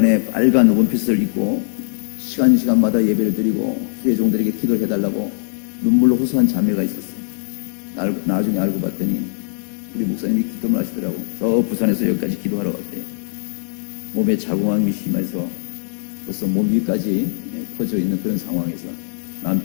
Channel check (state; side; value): silent; right; 66 dB below the other